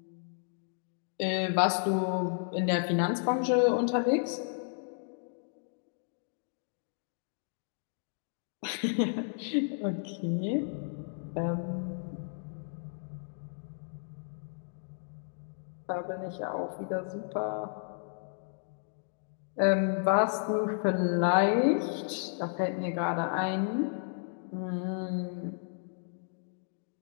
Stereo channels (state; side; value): silent; right; digital silence